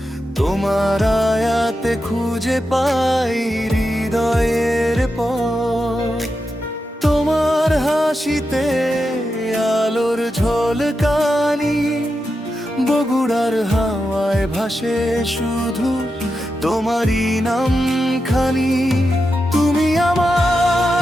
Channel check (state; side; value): normal; both; correlation 0.88